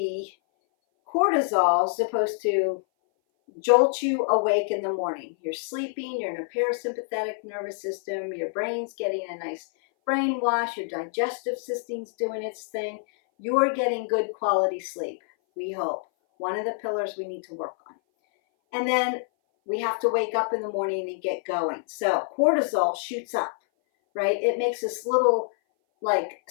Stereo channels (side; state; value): right; silent; 58 dB below the other